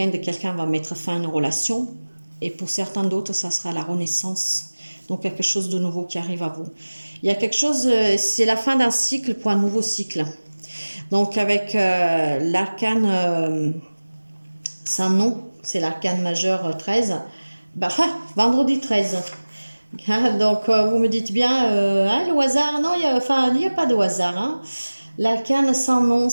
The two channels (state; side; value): inverted; both; correlation -1.00